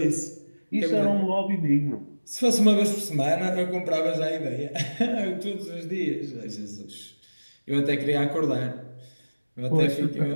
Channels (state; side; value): inverted; both; correlation -1.00